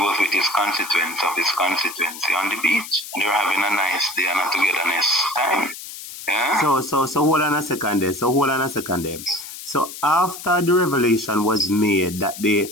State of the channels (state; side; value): noise; left; hiss, 12 dB below the sound